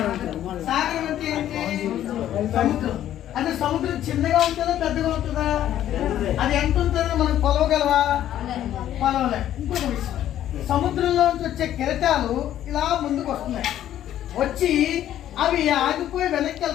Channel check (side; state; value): right; quieter; 11.8 dB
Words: సాగరం అంటే ఏంటి? సముద్రం. అంటే సముద్రం చిన్నగా ఉంటుందా పెద్దగా ఉంటుందా? అది ఎంత ఉంటుందో మనం కొలవగలవా? కొలవలే. ఇంకొక విషయం, సముద్రంలో నుంచి వచ్చే కెరటాలు ఇలా ముందుకు వస్తున్నాయి, వచ్చి అవి ఆగిపోయి వెనక్కి